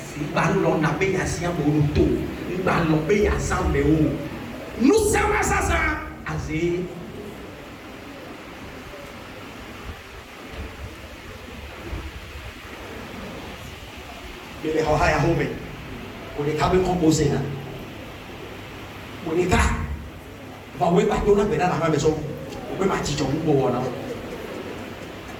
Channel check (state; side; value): identical; both; correlation 1.00